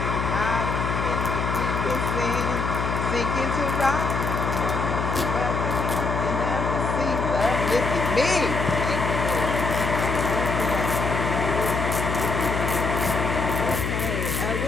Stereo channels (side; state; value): left; noise; hum, 2 dB below the sound